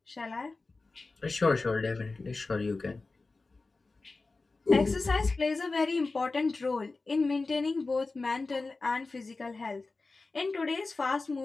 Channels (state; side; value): quieter; right; 3.6 dB